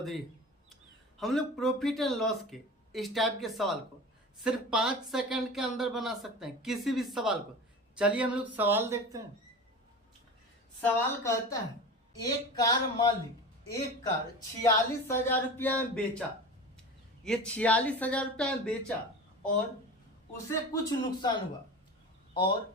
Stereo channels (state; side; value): normal; both; correlation 0.33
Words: है। हम लोग प्रॉफिट एंड लॉस के इस टाइप के सवाल को सिर्फ 5 सेकंड के अंदर बना सकते हैं, किसी भी सवाल को। चलिए हम लोग सवाल देखते हैं। सवाल कहता है एक कार मालिक एक कार 46,000 रुपया में बेचा। ये 46,000 रुपया में बेचा और उसे कुछ नुकसान हुआ।